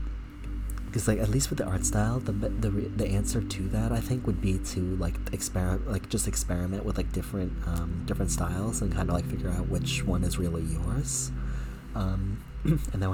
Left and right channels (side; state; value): both; identical; correlation 1.00